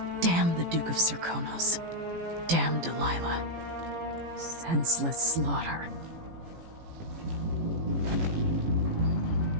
Damn the Duke of Serkonos. Damn Delilah. Senseless slaughter.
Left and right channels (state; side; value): late; left; 18 ms